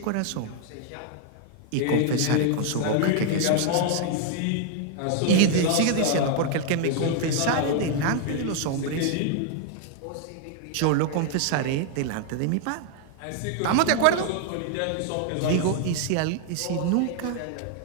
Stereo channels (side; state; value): both; different; correlation 0.00